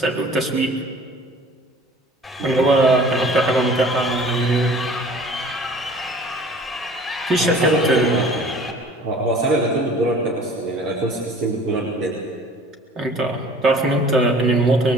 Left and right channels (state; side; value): normal; both; correlation 0.48